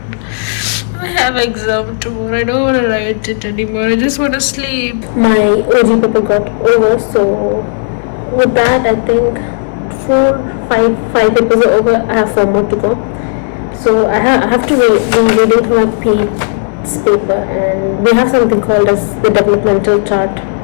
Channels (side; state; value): right; silent; digital silence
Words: I have exam tomorrow. I don't want to write it anymore. I just want to sleep. My OG paper got over, so with that, I think 5 papers are over. I have 4 more to go. So I have to be reading through my PE's paper, and we have something called as the developmental chart.